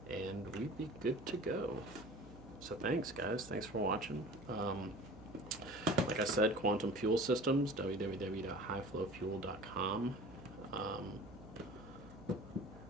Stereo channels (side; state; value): right; noise; hum, 18 dB below the sound